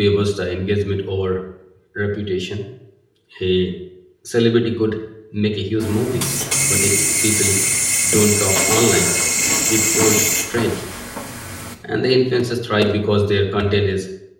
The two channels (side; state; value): both; identical; correlation 1.00